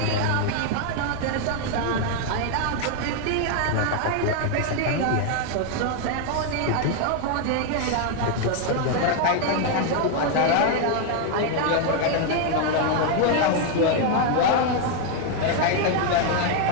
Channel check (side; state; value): both; different; correlation 0.01